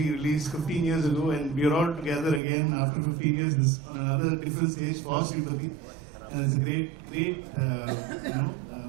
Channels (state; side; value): drops out; left; at 2.4 s